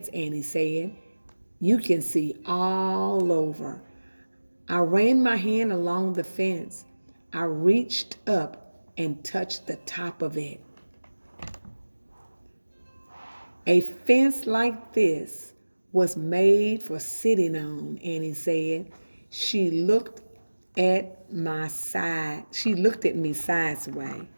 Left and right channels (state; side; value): inverted; both; correlation -1.00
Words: Annie said. You can see all over. I ran my hand along the fence. I reached up and touched the top of it. A fence like this was made for sitting on, Annie said. She looked at my side. She looked at me sideways.